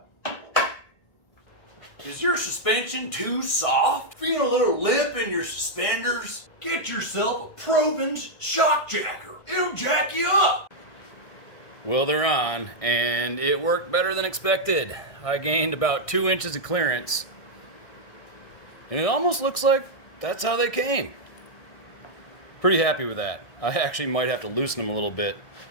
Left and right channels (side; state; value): right; late; 1.6 ms